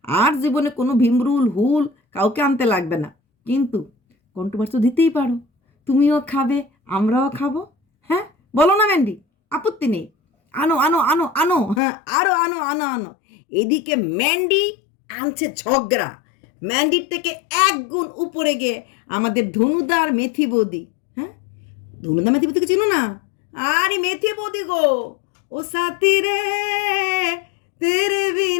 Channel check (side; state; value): right; drops out; at 11.8 s